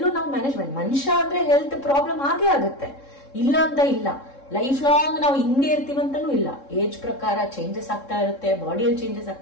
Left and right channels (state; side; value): late; right; 3.7 ms